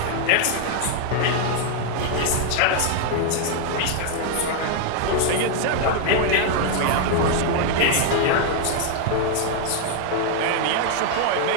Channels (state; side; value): different; both; correlation 0.00